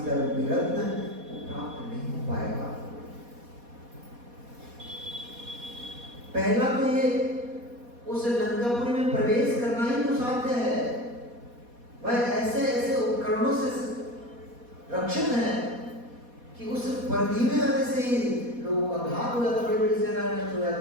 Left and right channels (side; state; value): left; late; 4.2 ms